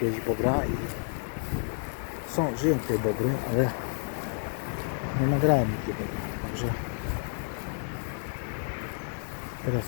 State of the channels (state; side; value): silent; right; 58 dB below the other